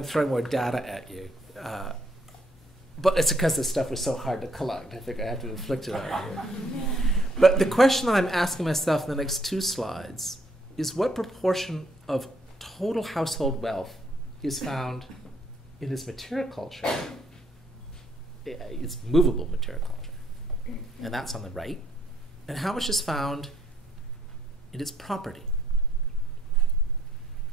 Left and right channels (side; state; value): both; normal; correlation 0.68